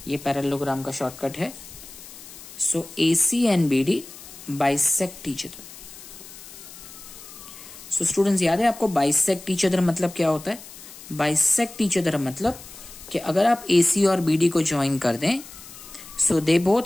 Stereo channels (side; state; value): left; noise; hiss, 17 dB below the sound